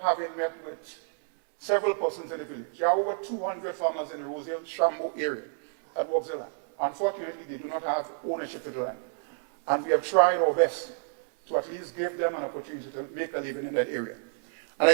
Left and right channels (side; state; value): left; silent; digital silence